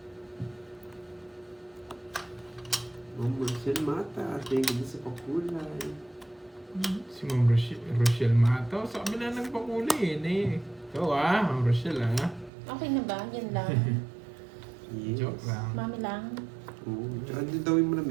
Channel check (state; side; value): drops out; left; at 12.5 s